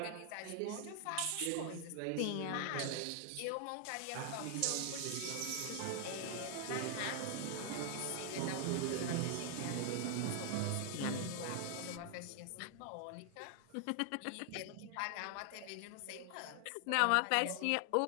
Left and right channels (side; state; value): both; different; correlation 0.00